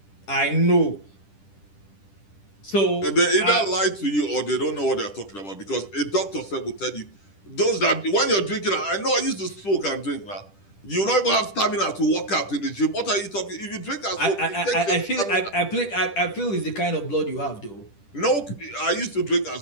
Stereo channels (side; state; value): right; late; 10 ms